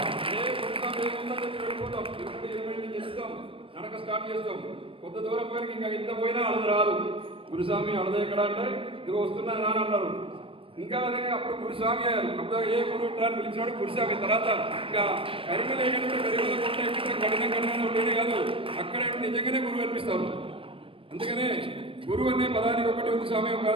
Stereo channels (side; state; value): left; late; 0.26 ms